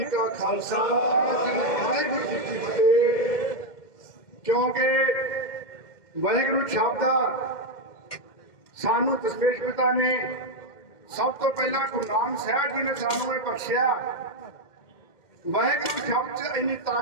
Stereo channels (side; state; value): right; late; 2.1 ms